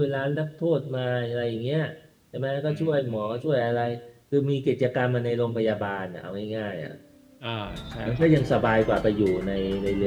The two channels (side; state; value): both; identical; correlation 1.00